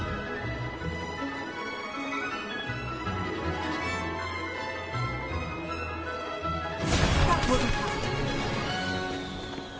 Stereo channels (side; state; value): both; identical; correlation 1.00